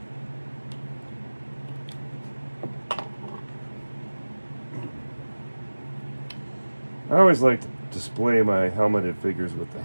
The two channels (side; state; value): both; inverted; correlation -1.00